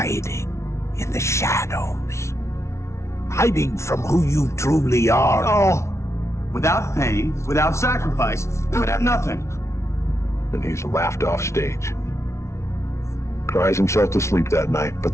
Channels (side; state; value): right; late; 0.13 ms